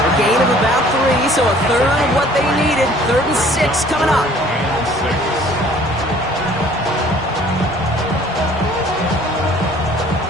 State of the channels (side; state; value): both; normal; correlation 0.54